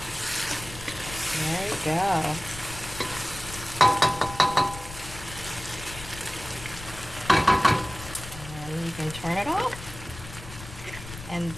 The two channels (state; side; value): noise; left; rumble, 13 dB below the sound